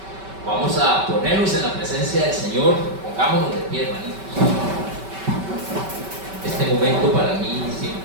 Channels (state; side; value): late; left; 5.2 ms